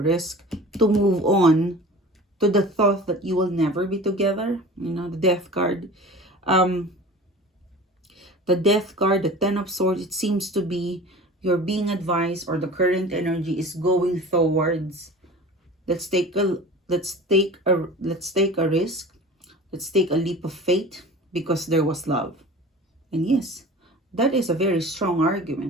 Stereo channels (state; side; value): normal; both; correlation 0.39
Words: to move on to the thought that you will never be together. You know, the Death card. The Death card, the Ten of Swords, it seems to be you're being advised, or the current energy is going towards, let's take a risk. Let's take a leap of faith because there was love. And yes, that is a very strong